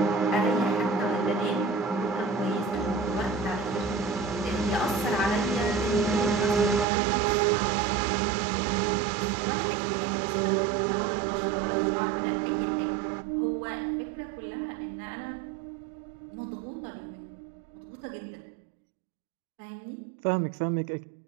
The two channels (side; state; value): left; drops out; at 6.9 s